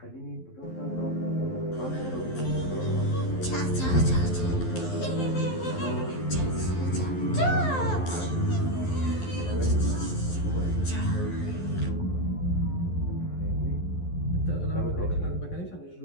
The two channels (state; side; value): late; right; 11 ms